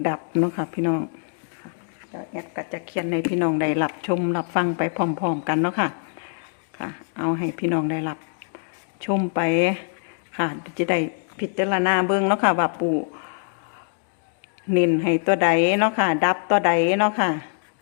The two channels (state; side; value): silent; right; digital silence